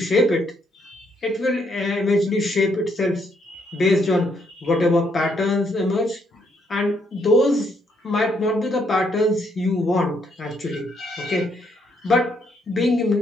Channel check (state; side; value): normal; both; correlation 0.73